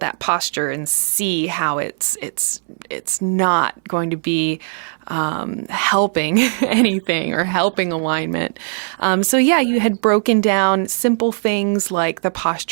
posture and see how it's not going to be helping anything or helping alignment. You had broken down simple things like the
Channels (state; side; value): silent; left; 67 dB below the other